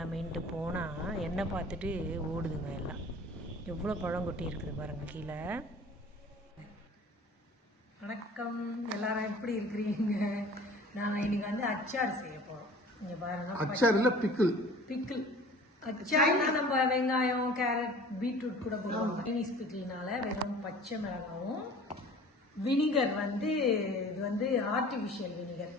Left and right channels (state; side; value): normal; both; correlation 0.45